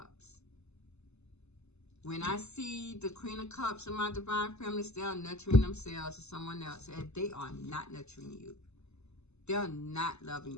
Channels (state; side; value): late; right; 0.81 ms